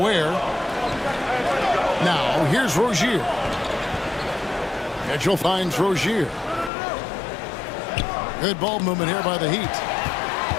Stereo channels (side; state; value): right; drops out; at 6.7 s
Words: Now, here's Rozier. Mitchell finds Rozier. Good ball movement here by the Heat.